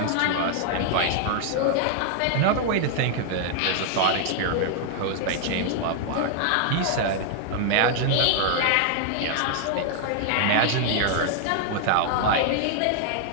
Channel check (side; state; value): both; different; correlation 0.00